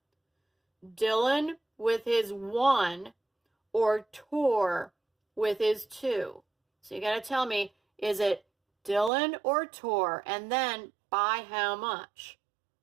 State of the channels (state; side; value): drops out; left; at 9.1 s